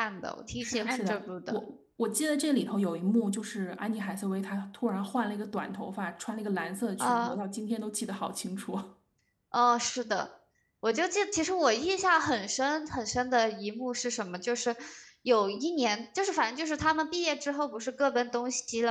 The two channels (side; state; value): both; identical; correlation 1.00